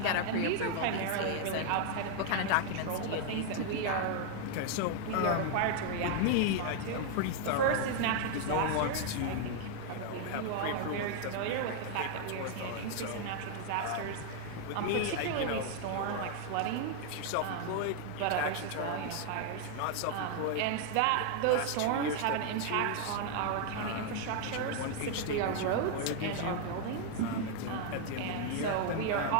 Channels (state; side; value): different; both; correlation 0.00